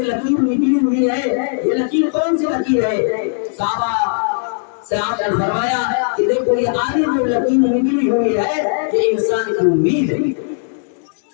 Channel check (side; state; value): right; silent; digital silence